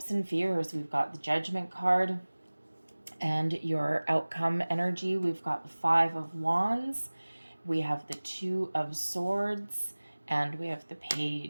and fears. We've got the Judgment card. And your outcome energy, we've got the 5 of Wands, we have the 2 of Swords, and we have the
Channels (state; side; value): inverted; both; correlation -1.00